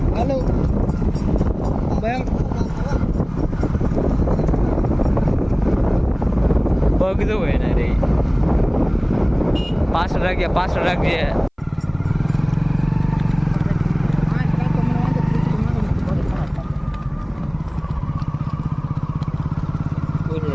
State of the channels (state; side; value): identical; both; correlation 1.00